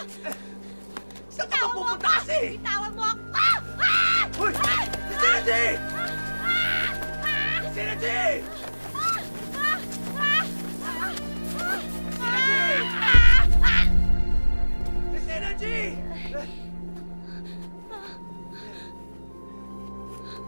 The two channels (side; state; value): both; inverted; correlation -1.00